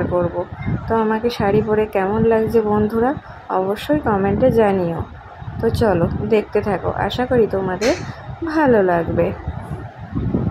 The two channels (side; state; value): both; identical; correlation 1.00